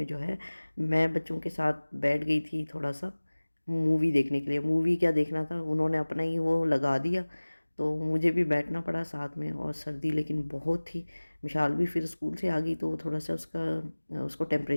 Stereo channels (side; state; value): both; inverted; correlation -1.00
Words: जो है मैं बच्चों के साथ बैठ गई थी थोड़ा सा मूवी देखने के लिए। मूवी क्या देखना था, उन्होंने अपना ही वो लगा दिया तो मुझे भी बैठना पड़ा साथ में। और सर्दी लेकिन बहुत थी। मिशाल भी फिर स्कूल से आ गई तो थोड़ा सा उसको